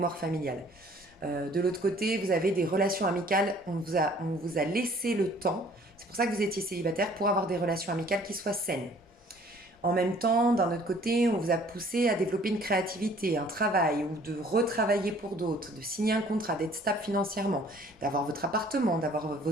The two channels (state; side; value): normal; both; correlation 0.56